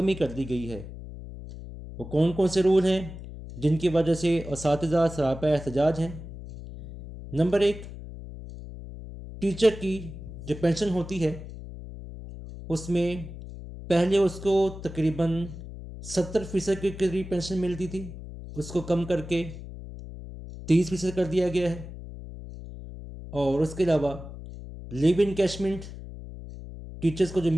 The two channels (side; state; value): left; noise; hum, 12 dB below the sound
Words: کر دی گئی ہے۔ وہ کون کون سے رول ہیں جن کی وجہ سے اساتذہ سراپا احتجاج ہیں؟ نمبر 1، ٹیچر کی جو پینشن ہوتی ہے اس میں پہلے اس کو تقریباً 70% کے قریب پینشن ملتی تھی، اس کو کم کر کے 30% کر دیا گیا ہے۔ اور اس کے علاوہ لیو انکیشمنٹ ٹیچرز کو جو